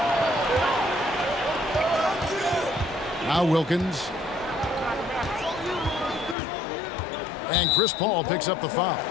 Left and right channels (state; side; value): drops out; right; at 6.4 s